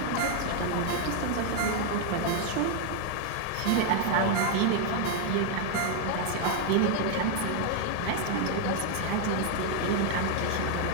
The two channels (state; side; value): different; both; correlation 0.00